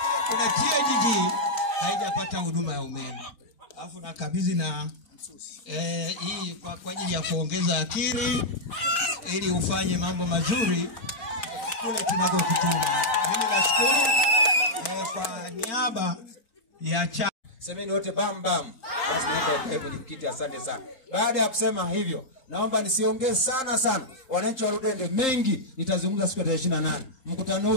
kuna TOGG haijapata huduma ya umeme. Alafu nakabidhi na hii kwa ajili ya kuongeza akili ili ufanye mambo mazuri kule tunakokutuma. Mimi nashukuru kwa niaba ya semeni wote bam bam. Basi naomba ukae kwenye kiti, asante sana. Baada ya kusema hivyo, naomba nisiongee sana. Wananchi wa Ludende mengi nitazungumza siku ya 28. Mkutano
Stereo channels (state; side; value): late; right; 3.8 ms